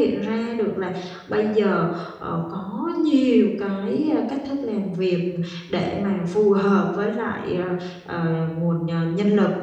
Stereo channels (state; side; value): identical; both; correlation 1.00